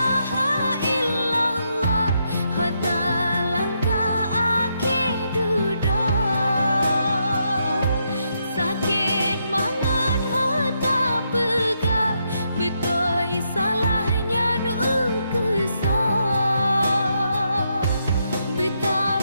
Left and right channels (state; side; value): inverted; both; correlation -0.79